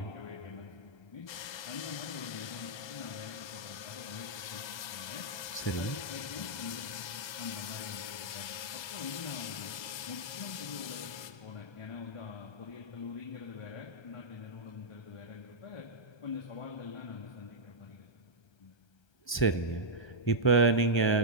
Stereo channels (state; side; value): late; right; 1.3 ms